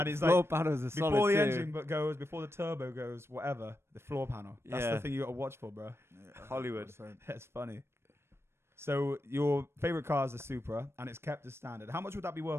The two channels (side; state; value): left; late; 0.12 ms